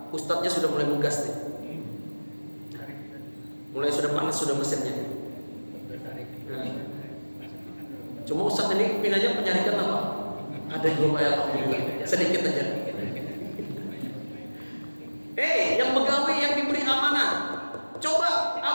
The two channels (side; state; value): both; inverted; correlation -1.00